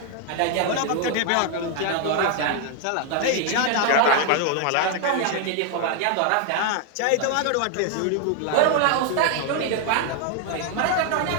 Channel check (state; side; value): different; both; correlation 0.00